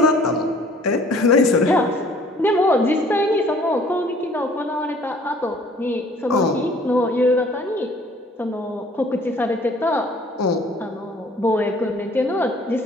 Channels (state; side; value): normal; both; correlation 0.55